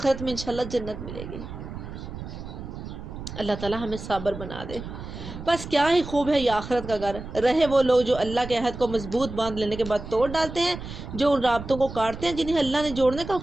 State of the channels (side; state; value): right; noise; rumble, 10 dB below the sound